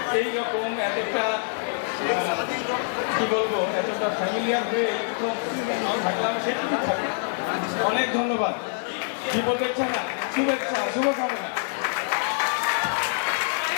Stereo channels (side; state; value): right; silent; 61 dB below the other